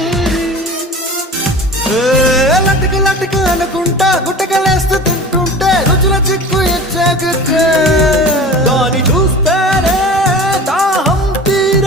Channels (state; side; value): normal; both; correlation 0.36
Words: లట్టుకు లట్టుకు అనుకుంటా గుట్టకలేస్తూ తింటుంటే రుచుల చిక్కు ఇచ్చాక దాని చూస్తేనే దాహం